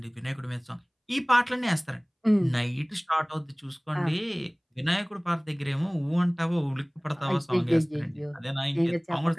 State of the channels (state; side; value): identical; both; correlation 1.00